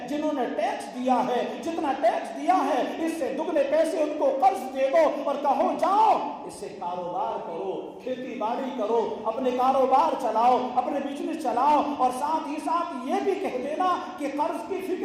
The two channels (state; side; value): identical; both; correlation 1.00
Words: جنہوں نے ٹیکس دیا ہے، جتنا ٹیکس دیا ہے اس سے دگنے پیسے ان کو قرض دے دو اور کہو جاؤ اس سے کاروبار کرو، کھیتی باڑی کرو، اپنے کاروبار چلاؤ، اپنے بزنس چلاؤ، اور ساتھ ہی ساتھ یہ بھی کہہ دینا کہ قرض کی